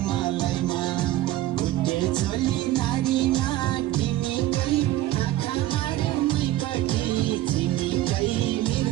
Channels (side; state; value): left; quieter; 14.7 dB